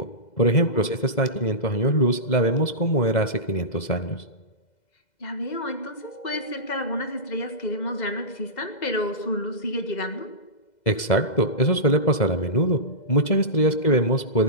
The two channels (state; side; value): late; right; 2.0 ms